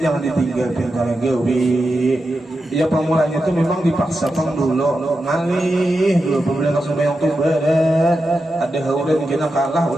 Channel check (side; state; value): both; normal; correlation 0.89